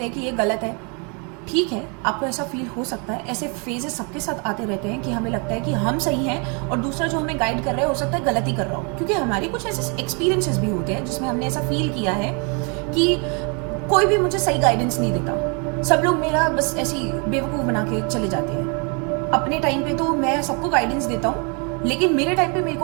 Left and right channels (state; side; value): quieter; left; 34.7 dB